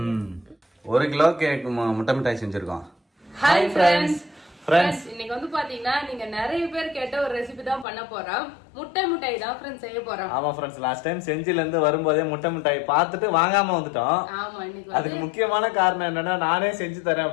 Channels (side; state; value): right; drops out; at 7.9 s